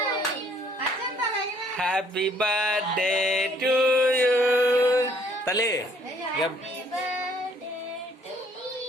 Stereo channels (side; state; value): both; normal; correlation 0.62